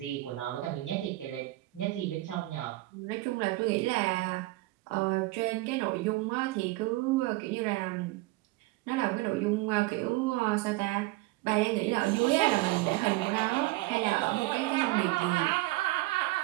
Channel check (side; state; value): left; quieter; 19.5 dB